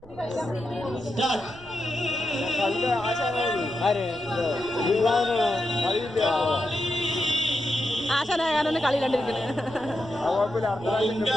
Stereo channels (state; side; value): noise; right; rumble, 21 dB below the sound